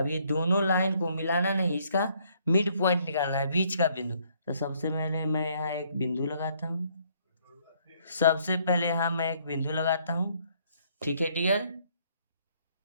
ये दोनों लाइन को मिलाना नहीं, इसका मिड पॉइंट निकालना है, बीच का बिंदु। तो सबसे पहले मैं यहाँ एक बिंदु लगाता हूँ, सबसे पहले यहाँ मैं एक बिंदु लगाता हूँ, ठीक है डियर,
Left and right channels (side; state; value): both; inverted; correlation -0.66